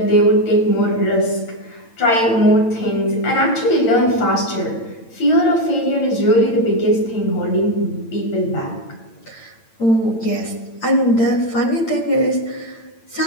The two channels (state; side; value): late; right; 8.9 ms